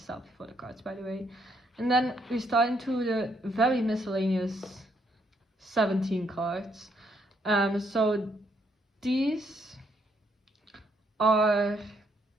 photo cards, by the way. And then we start into the very miscellaneous 17 cards. So these are,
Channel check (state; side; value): normal; both; correlation 0.72